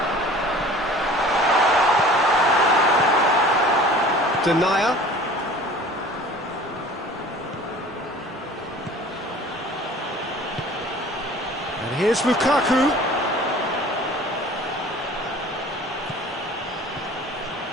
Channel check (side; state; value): both; normal; correlation 0.45